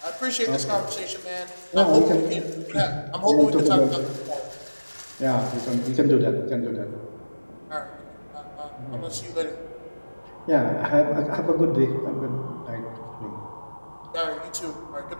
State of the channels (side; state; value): both; inverted; correlation -1.00